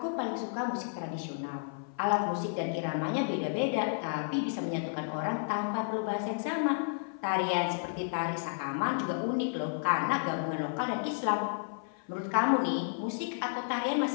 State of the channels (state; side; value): silent; right; 56 dB below the other